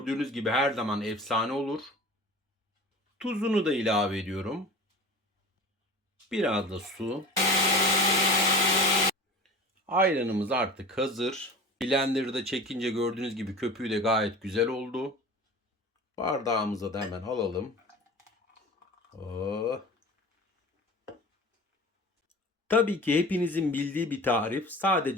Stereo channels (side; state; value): both; normal; correlation 0.37